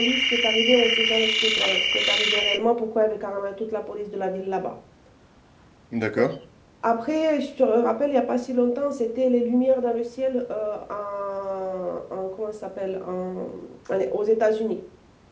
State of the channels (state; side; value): identical; both; correlation 1.00